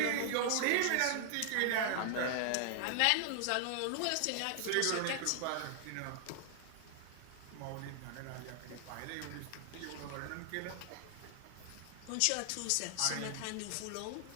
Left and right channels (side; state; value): both; different; correlation 0.00